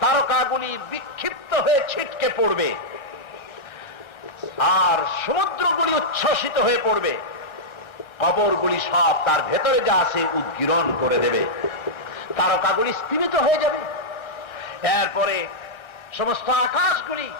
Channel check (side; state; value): right; late; 1.3 ms